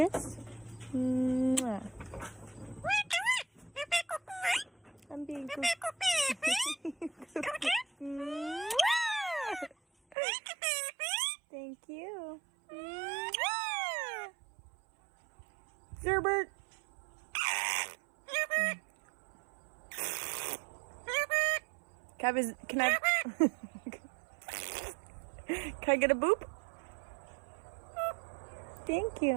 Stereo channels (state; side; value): drops out; left; at 10.2 s